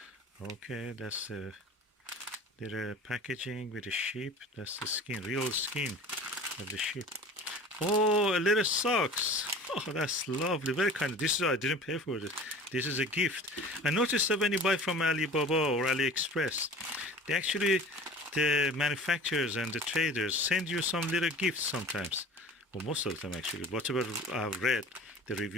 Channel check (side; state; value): both; normal; correlation 0.41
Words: Okay, that's a little packaging with a sheep. That's the skin, real skin of the sheep. Oh, a little socks. Oh, that's lovely. Very kind. This is, I didn't pay for this. This is a gift. I noticed that when you buy from Alibaba or AliExpress, they actually, the manufacturers and the traders send you some little gifts sometimes, or most of the time actually. Whatever I've read, the